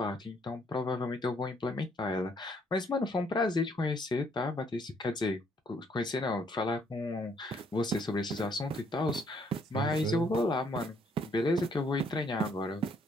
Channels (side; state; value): both; normal; correlation 0.68